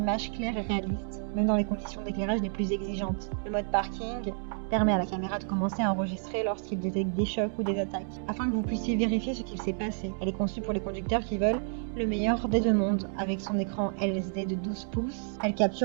claires et réalistes, même dans les conditions d'éclairage les plus exigeantes. Le mode parking permet à la caméra de commencer à enregistrer lorsqu'il détecte des chocs ou des attaques, afin que vous puissiez vérifier ce qu'il s'est passé. Elle est conçue pour les conducteurs qui veulent le meilleur des deux mondes. Avec son écran LCD de 12 pouces, elle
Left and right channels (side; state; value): left; silent; 58 dB below the other